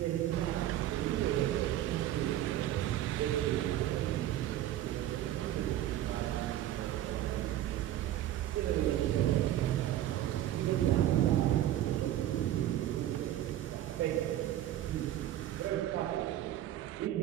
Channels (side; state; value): left; quieter; 12.9 dB